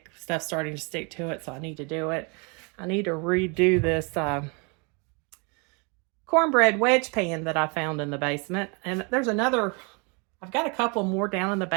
Stuff's starting to stick to it, so I need to do it. I need to redo this cornbread wedge pan that I found in the basement. And there's I've got a couple more down in the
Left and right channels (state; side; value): quieter; left; 32.6 dB